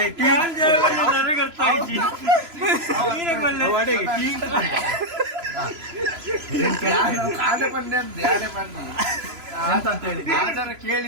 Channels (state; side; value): late; left; 3.0 ms